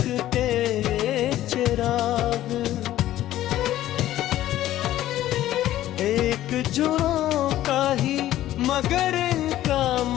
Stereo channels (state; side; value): quieter; right; 13.7 dB